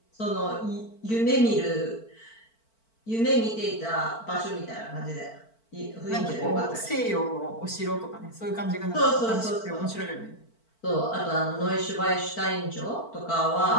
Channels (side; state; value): right; late; 4.5 ms